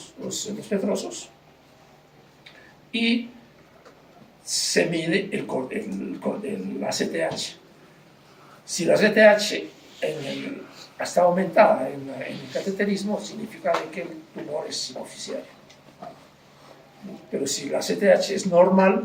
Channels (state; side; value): identical; both; correlation 1.00